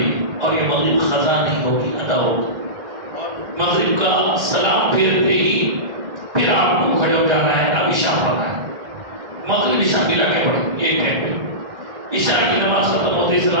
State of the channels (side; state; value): left; late; 1.3 ms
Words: اور یہ مغرب قضا نہیں ہوگی، ادا ہوگی۔ مغرب کا سلام پھیرتے ہی پھر آپ کو کھڑے ہو جانا ہے، اب عشاء پڑھنا ہے، مغرب عشاء ملا کے پڑھیں ایک ٹائم پہ۔ عشاء کی نماز ختم ہوتے